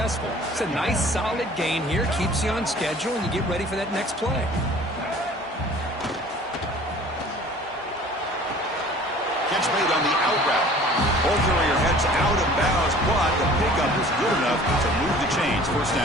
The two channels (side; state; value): both; normal; correlation 0.48